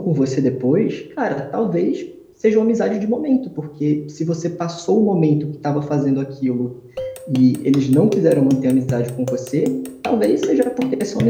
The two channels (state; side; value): identical; both; correlation 1.00